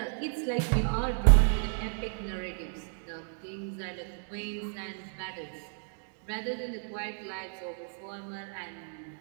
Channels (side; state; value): left; silent; digital silence